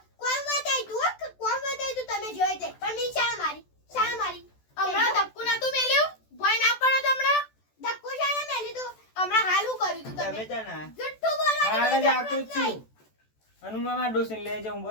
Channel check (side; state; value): right; late; 14 ms